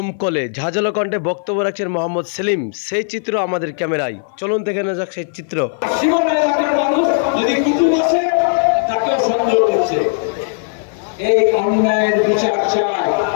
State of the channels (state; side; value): silent; right; 56 dB below the other